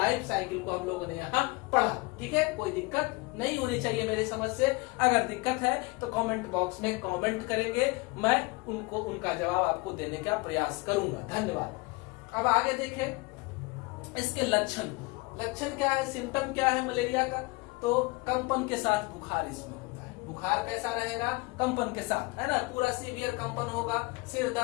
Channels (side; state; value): right; quieter; 24.9 dB